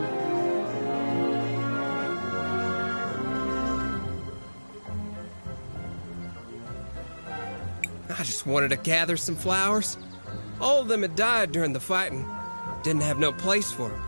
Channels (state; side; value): inverted; both; correlation -1.00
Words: I just wanted to gather some flowers. All of them had died during the fighting. Didn't have no place for them.